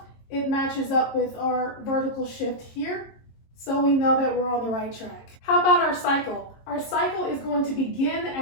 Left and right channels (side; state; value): right; late; 22 ms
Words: it matches up with our vertical shift here. So we know that we're on the right track. How about our cycle? Our cycle is going to begin